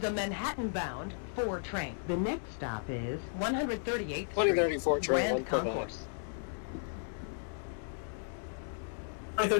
a Manhattan-bound 4 train. The next stop is 138th 2034 Street, train, Grand 149. Concourse.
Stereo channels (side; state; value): right; silent; digital silence